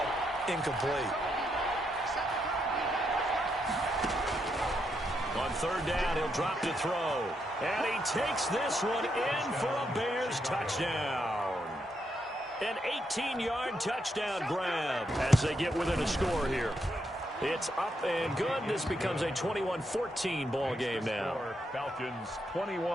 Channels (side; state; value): both; normal; correlation 0.80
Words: incomplete. On third down, he'll drop to throw. And he takes this one in for a Bears touchdown. An 18-yard touchdown grab as they get within a score here. It's up and good. This becomes a 21-14 ball game now. Falcons